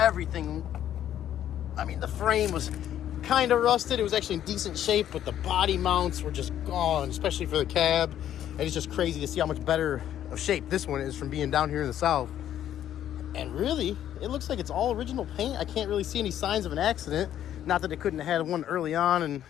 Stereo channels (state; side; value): quieter; right; 11.1 dB